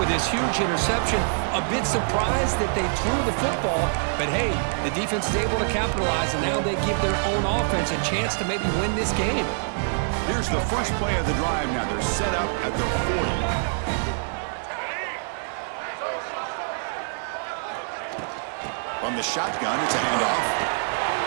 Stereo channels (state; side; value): silent; left; digital silence